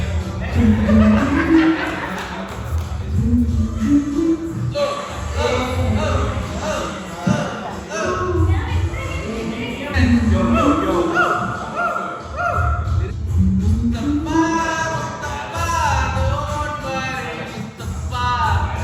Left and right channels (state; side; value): identical; both; correlation 1.00